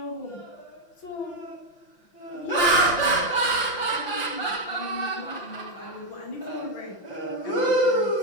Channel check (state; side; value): late; right; 5.8 ms